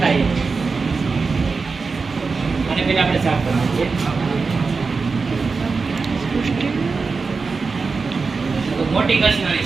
થાય. અને પેલા આપણે સાફ કરવાનું છે. તો મોટી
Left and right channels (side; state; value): left; quieter; 4.5 dB